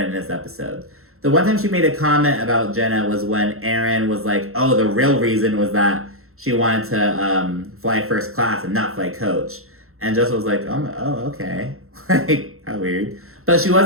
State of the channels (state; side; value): late; left; 0.62 ms